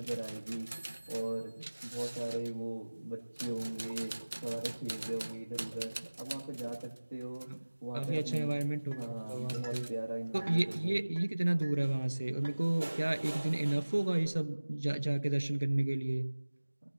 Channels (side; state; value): both; inverted; correlation -1.00